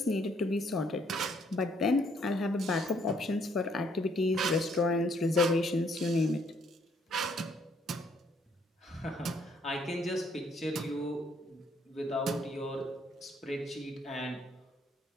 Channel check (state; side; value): normal; both; correlation 0.67